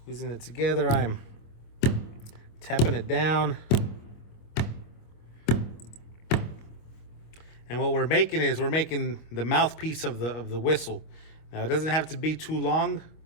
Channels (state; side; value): late; right; 25 ms